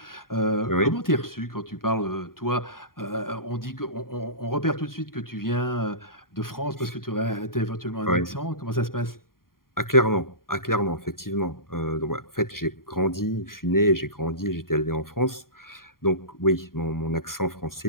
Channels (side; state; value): right; late; 0.91 ms